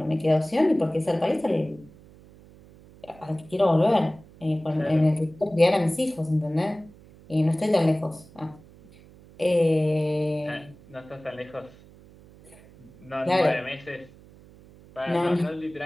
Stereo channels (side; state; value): right; noise; hum, 23 dB below the sound